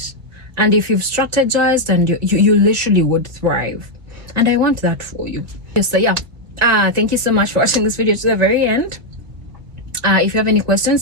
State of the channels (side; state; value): left; late; 2.1 ms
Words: and if you've strategized, and you literally would thrive, and I want that for you. So yeah, thank you so much for watching this video to the very end. If you have any